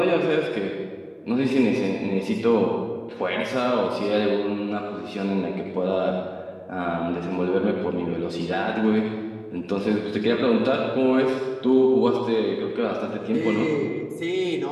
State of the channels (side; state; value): both; identical; correlation 1.00